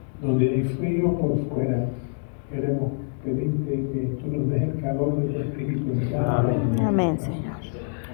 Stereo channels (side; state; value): right; silent; digital silence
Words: donde hay frío por fuera, queremos pedirte que tú nos des el calor de tu espíritu en cada uno. Amén, Señor.